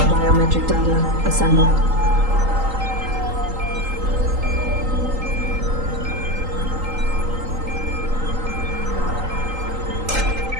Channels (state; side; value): late; left; 3.8 ms